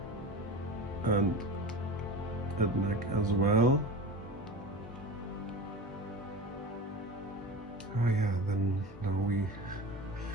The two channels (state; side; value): normal; both; correlation 0.31